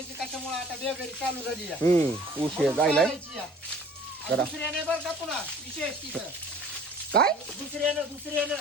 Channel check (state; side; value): normal; both; correlation 0.49